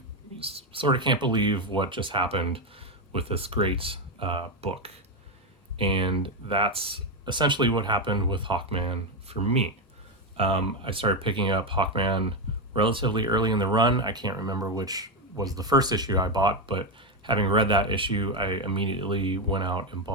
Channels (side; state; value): both; normal; correlation 0.09